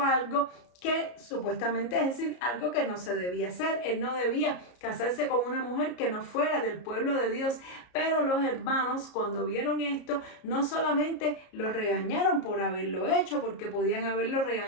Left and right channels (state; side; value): late; right; 33 ms